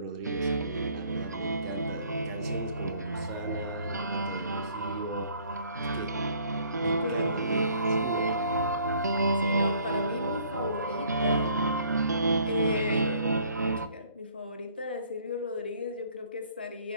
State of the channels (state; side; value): inverted; both; correlation -0.59